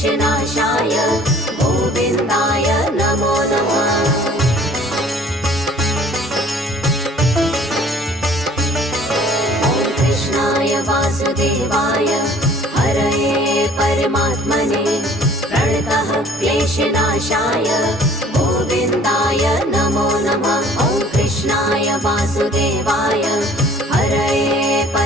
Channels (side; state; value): both; normal; correlation 0.53